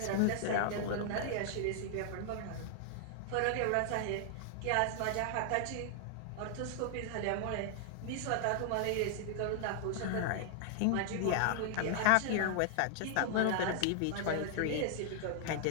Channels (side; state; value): both; different; correlation 0.00